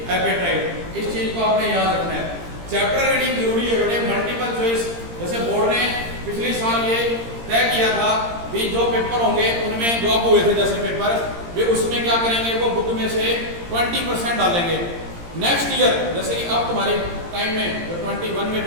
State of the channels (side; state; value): left; late; 17 ms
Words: hydroxyapatite. इस चीज को आपने याद रखना है। चैप्टर रीडिंग जरूरी है बेटे, मल्टीपल चॉइस। जैसे बोर्ड ने पिछले साल ये तय किया था भी जो पेपर होंगे उनमें जो अब हुए थे जैसे पेपर, वे उसमें क्या करेंगे, वो बुक में से 20% डालेंगे। नेक्स्ट ईयर जैसे कि अब तुम्हारे टाइम में जो 21 में